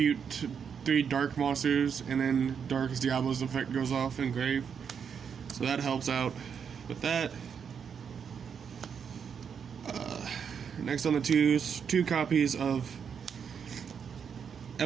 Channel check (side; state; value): left; quieter; 7.0 dB